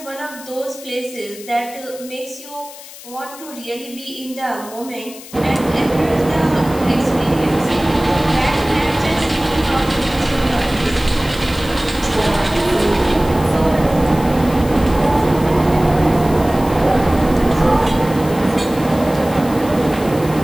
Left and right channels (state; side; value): noise; left; hiss, 17 dB below the sound